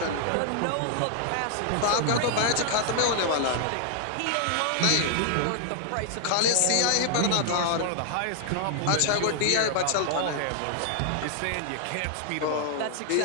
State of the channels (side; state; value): both; different; correlation -0.01